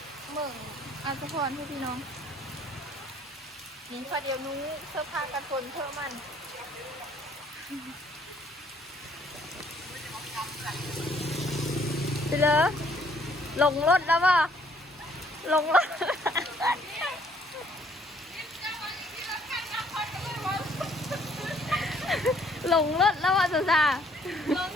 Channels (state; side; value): normal; both; correlation 0.63